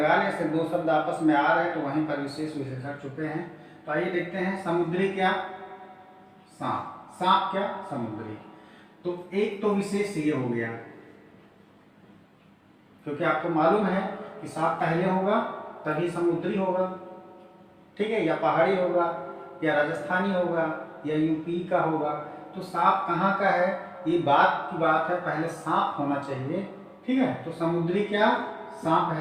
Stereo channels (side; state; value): both; identical; correlation 1.00